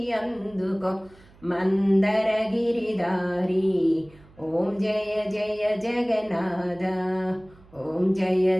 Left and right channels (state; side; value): noise; right; hum, 26 dB below the sound